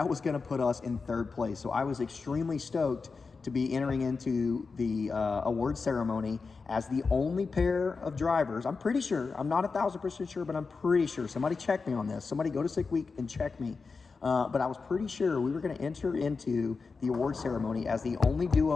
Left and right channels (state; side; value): quieter; right; 4.6 dB